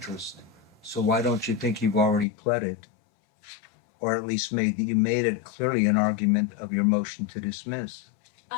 So why don't you think you've already pled it? or at least you made it clearly an argument of your motion to dismiss.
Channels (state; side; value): drops out; right; at 2.2 s